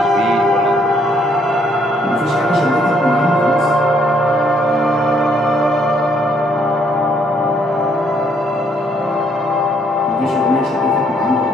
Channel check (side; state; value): both; normal; correlation 0.68